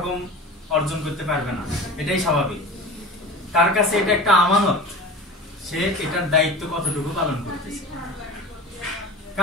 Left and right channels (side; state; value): both; normal; correlation 0.35